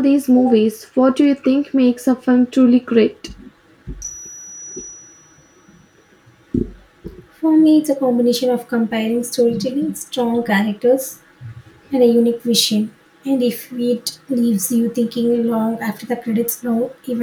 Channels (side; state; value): both; identical; correlation 1.00